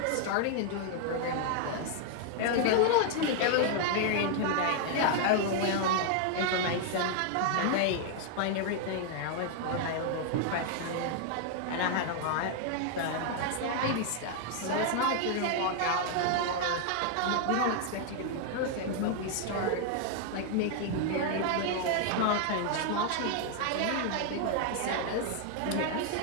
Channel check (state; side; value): different; both; correlation 0.00